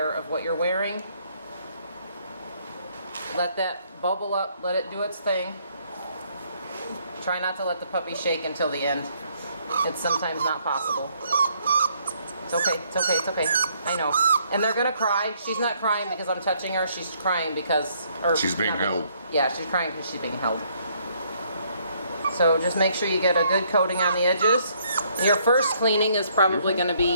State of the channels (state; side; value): inverted; both; correlation -0.68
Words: of what you're wearing. Let that bubble up, let it do its thing. Try not to let the puppy shake until the end. It's sometimes not possible. It's okay, it's okay, it's okay. I know. And they're gonna cry. She's not crying because I'm touching her. She's crying because... she's being held. Yeah, she's crying because she's being held. So just make sure you get a good coating on the edges. Your first cleaning is probably gonna